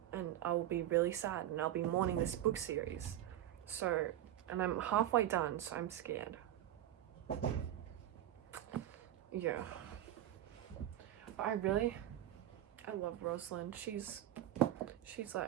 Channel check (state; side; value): quieter; left; 12.5 dB